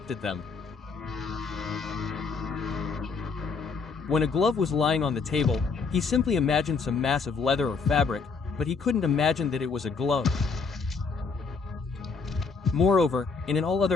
at them. When a glove was lying on the table, he simply imagined some mass of leather or fabric, but he couldn't imagine that it was a glove. Moreover, in all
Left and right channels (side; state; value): right; quieter; 4.9 dB